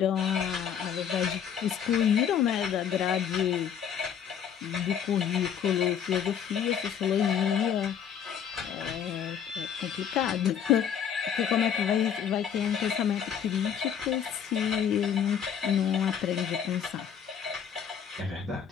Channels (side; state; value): right; quieter; 8.3 dB